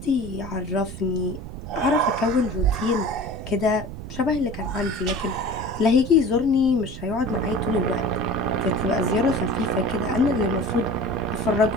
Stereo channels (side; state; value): right; noise; rumble, 10 dB below the sound